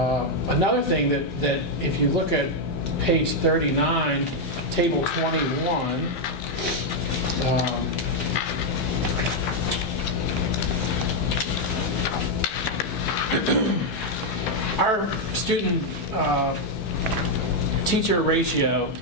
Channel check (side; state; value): right; late; 15 ms